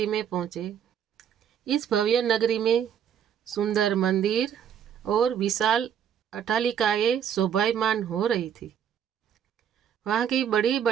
में पहुँचे। इस भव्य नगरी में सुंदर मंदिर और विशाल अट्टालिकाएं शोभायमान हो रही थी। वहाँ की बड़ी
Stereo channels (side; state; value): left; quieter; 8.8 dB